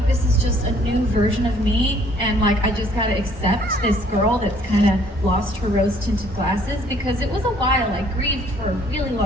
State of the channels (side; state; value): both; normal; correlation 0.60